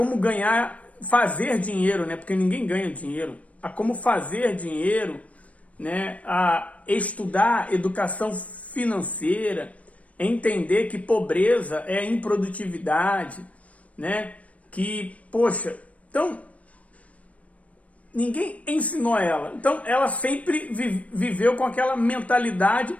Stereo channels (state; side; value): late; right; 0.066 ms